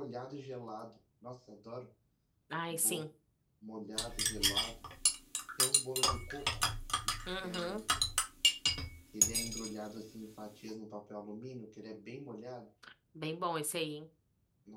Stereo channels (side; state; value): both; identical; correlation 1.00